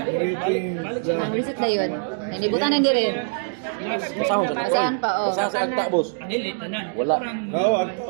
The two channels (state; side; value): silent; left; digital silence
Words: Ang reset na yun. Nalibutan na hindi rin. Basahon sa Basahon pa, oh. Basahon si Agta, boss. Dili, tanan. Wala. Oo,